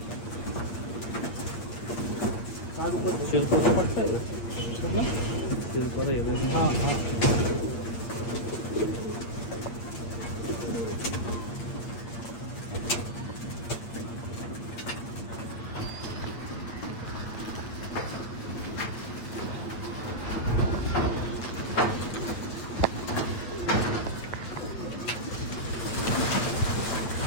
शिरपाचा पट्टा आहे शिरपाचा हिरव्या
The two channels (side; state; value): right; late; 8.6 ms